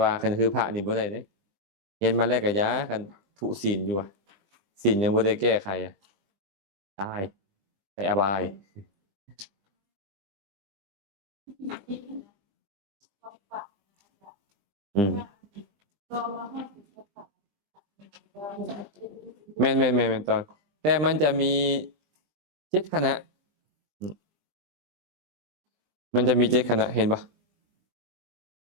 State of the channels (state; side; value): late; left; 20 ms